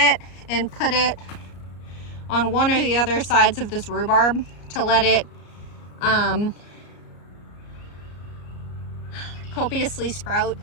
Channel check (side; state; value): right; late; 34 ms